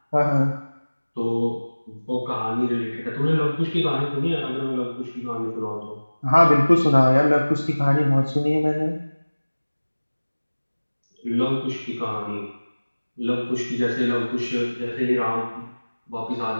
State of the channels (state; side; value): inverted; both; correlation -1.00